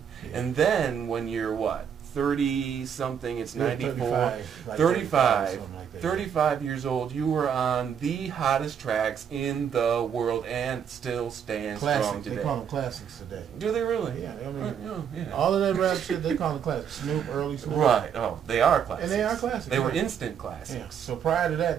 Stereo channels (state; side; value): quieter; left; 7.9 dB